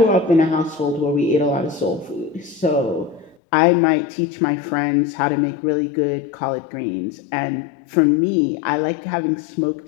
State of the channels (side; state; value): right; drops out; at 3.4 s